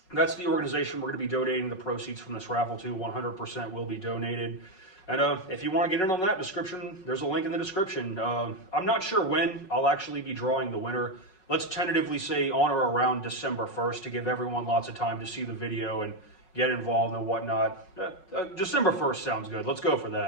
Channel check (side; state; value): right; late; 5.4 ms